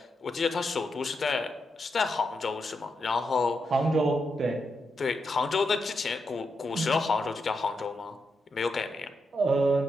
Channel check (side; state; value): both; normal; correlation 0.84